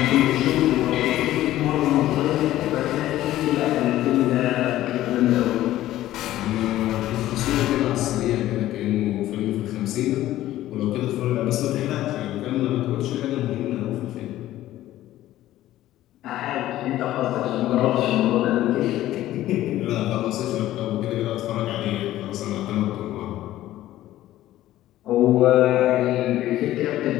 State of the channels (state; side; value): quieter; right; 14.4 dB